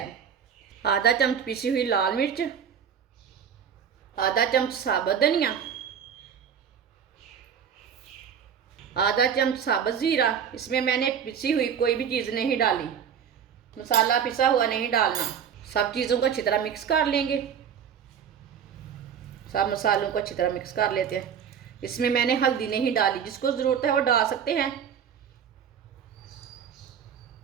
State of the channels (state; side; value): quieter; left; 8.0 dB